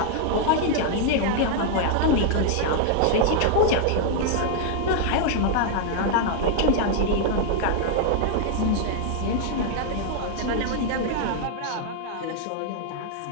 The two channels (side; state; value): both; different; correlation 0.00